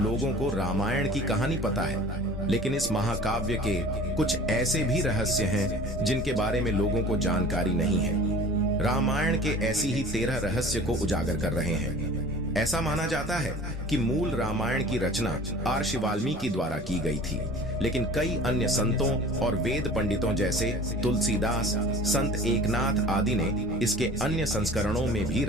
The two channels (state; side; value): noise; right; rumble, 14 dB below the sound